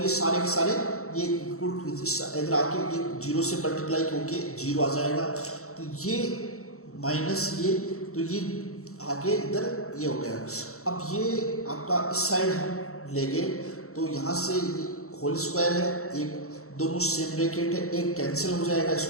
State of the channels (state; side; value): late; right; 0.64 ms